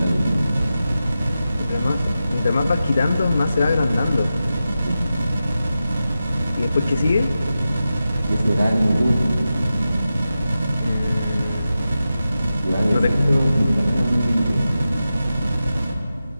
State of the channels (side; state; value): both; inverted; correlation -0.92